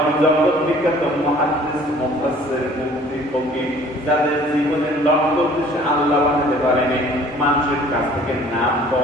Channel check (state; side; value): normal; both; correlation 0.53